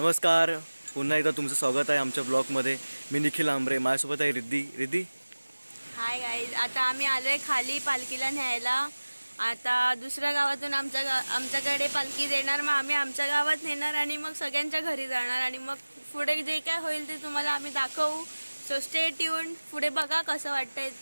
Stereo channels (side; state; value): both; inverted; correlation -1.00